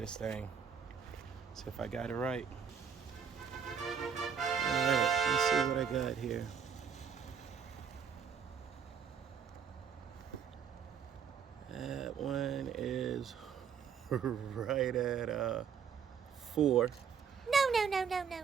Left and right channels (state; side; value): quieter; left; 7.1 dB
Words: thing. See if I got it right. All right, let's see what I got here. That one is right at 4. No.